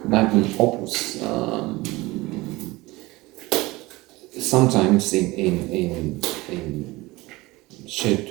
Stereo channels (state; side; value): quieter; left; 20.9 dB